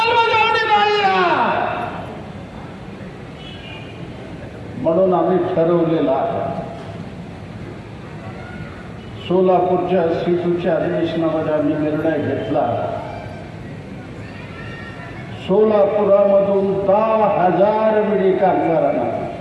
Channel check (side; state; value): both; identical; correlation 1.00